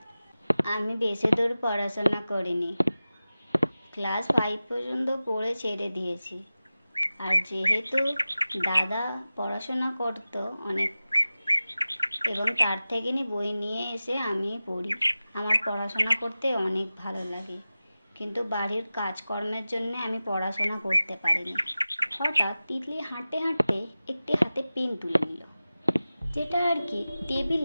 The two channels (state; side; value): inverted; both; correlation -0.96